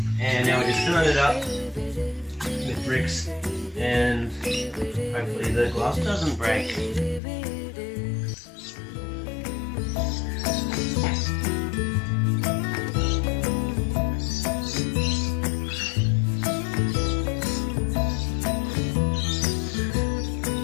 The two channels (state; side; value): drops out; right; at 7.2 s